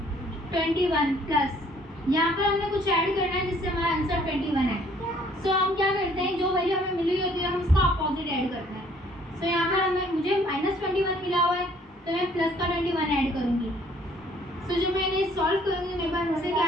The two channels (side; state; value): both; normal; correlation 0.60